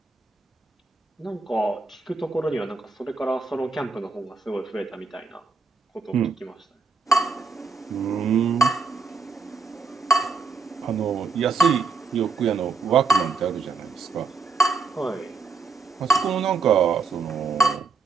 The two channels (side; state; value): left; quieter; 4.5 dB